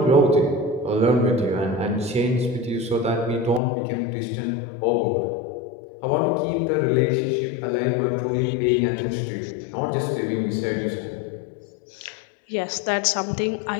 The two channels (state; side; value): drops out; right; at 3.6 s